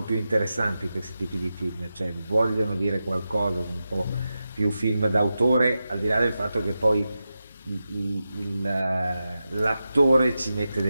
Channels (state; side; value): inverted; both; correlation -0.91